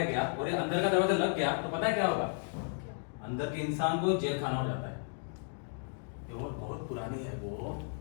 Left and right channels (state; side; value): silent; right; 55 dB below the other